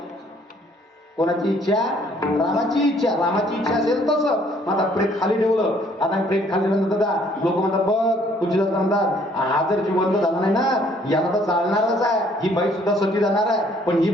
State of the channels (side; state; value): both; normal; correlation 0.62